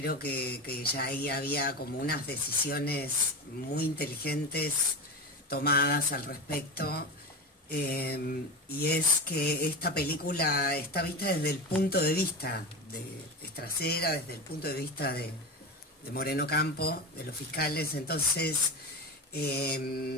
que ya ahí había como unas decisiones muy inteligentes tomadas al respecto, y es que esta película está vista desde el punto de vista de Estracera, desde el punto de vista de Moreno Campo, de los fiscales. Entonces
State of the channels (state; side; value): normal; both; correlation 0.23